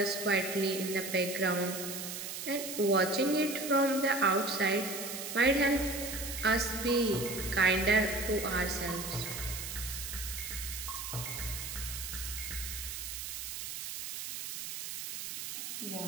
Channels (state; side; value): noise; right; hiss, 6 dB below the sound